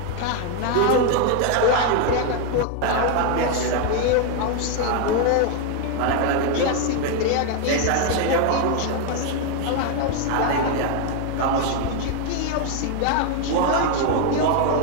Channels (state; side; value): different; both; correlation 0.01